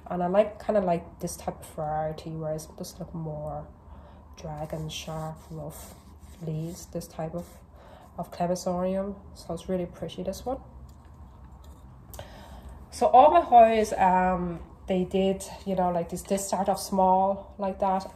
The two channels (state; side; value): identical; both; correlation 1.00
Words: and I kind of like this type of variety where it's just look more dragon, sharp, rough leaves. This type of Collection, so it's really pretty, this one. So all my Hoyas, they did, you know, like they start off small like that,